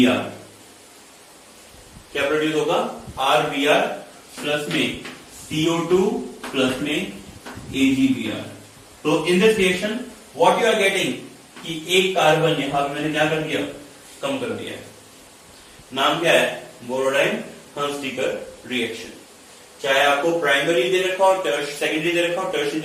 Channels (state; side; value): identical; both; correlation 1.00